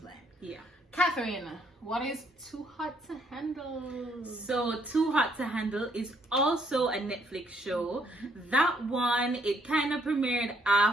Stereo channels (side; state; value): both; normal; correlation 0.70